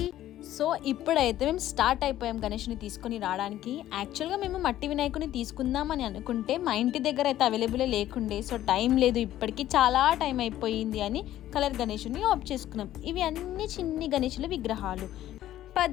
సో ఇప్పుడైతే మేము స్టార్ట్ అయిపోయాం గణేష్ని తీసుకొని రావడానికి. యాక్చువల్గా మేము మట్టి వినాయకుని తీసుకుందామని అనుకుంటే మా ఇంటి దగ్గర అయితే అవైలబుల్ లేకుండే. సో టైం లేదు, ఇప్పటికీ చాలా టైం అయిపోయింది అని కలర్ గణేషుని ఆఫ్ చేసుకున్నాం. ఇవి అన్ని చిన్ని గణేషుల విగ్రహాలు.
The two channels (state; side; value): quieter; right; 13.2 dB